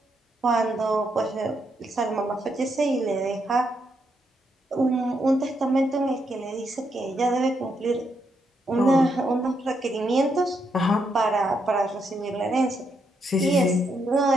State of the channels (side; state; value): both; normal; correlation 0.79